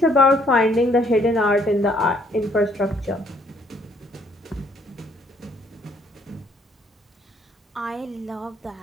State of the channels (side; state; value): both; normal; correlation 0.65